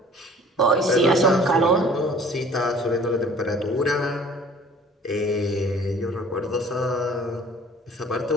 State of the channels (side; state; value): both; normal; correlation 0.50